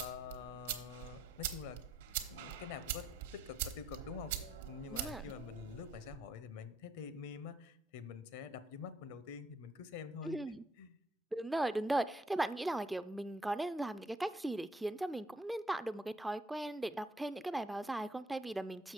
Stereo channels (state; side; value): normal; both; correlation 0.69